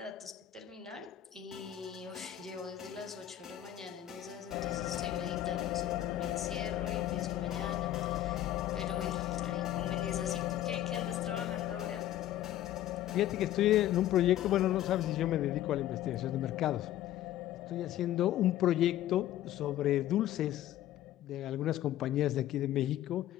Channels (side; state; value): right; quieter; 12.8 dB